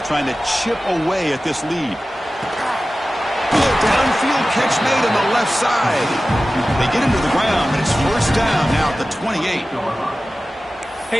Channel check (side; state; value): both; normal; correlation 0.95